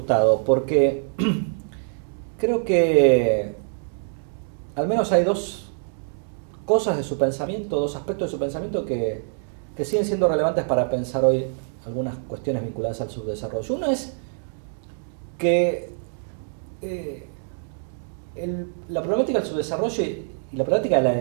porque creo que al menos hay dos cosas de su pensamiento, dos aspectos de su pensamiento que siguen siendo relevantes para pensar hoy algunas cuestiones vinculadas al subdesarrollo. Uno es que eh, la problemática del subdesarrollo y la problemática de la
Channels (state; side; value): silent; left; digital silence